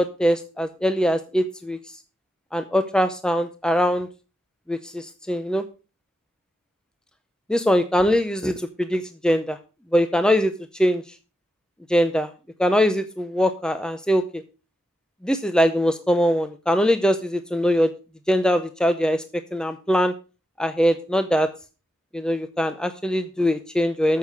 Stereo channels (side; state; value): both; normal; correlation 0.88